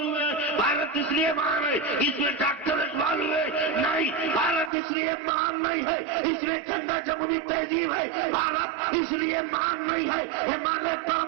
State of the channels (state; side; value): drops out; left; at 4.7 s